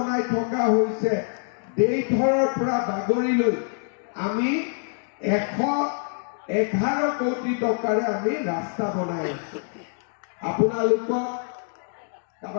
থকা হৈছে দেইথৰৰ পৰা বাগৰিলৈ আমি 111 কোটি টকাৰে আমি ৰাস্তা বনাই আছো আপোনালোকক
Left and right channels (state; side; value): silent; right; 56 dB below the other